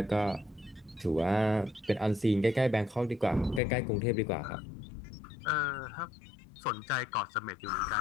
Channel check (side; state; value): right; drops out; at 3.6 s